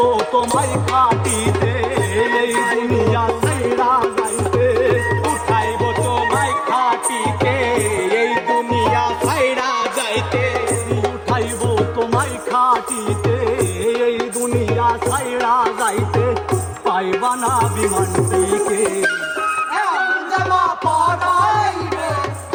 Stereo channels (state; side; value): identical; both; correlation 1.00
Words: তোমায় খাটিতে এই দুনিয়া ছাইড়া যাইতে উঠাইব তোমায় খাটিতে এই দুনিয়া ছাইড়া যাইতে উঠাইব তোমায় খাটিতে এই দুনিয়া ছাইড়া যাইতে পাইবা না বিমানটিকে জামা পরাইবে